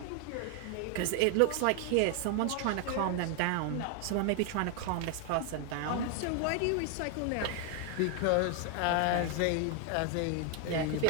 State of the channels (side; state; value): both; different; correlation 0.00